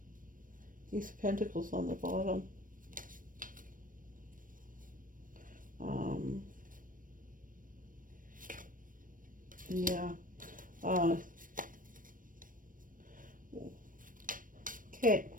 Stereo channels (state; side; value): late; left; 0.40 ms